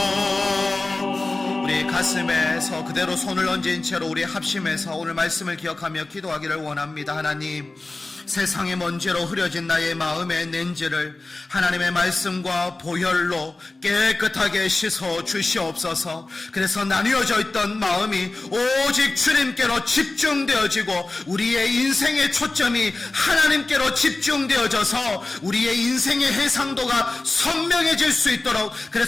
우리 가슴에서 그대로 손을 얹은 채로 우리 합심해서 오늘 말씀을 기억하며 기도하기를 원합니다. 하나님, 세상의 먼지로 흐려진 나의 마음의 렌즈를 하나님의 말씀과 보혈로 깨끗하게 씻어 주시옵소서. 그래서 나뉘어져 있던 마음이 오직 주님께로 집중되어지고 우리의 인생의 초점이 하나님께로 집중되어져서 우리의 인생의 해상도가 선명해질 수 있도록,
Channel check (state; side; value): quieter; right; 3.2 dB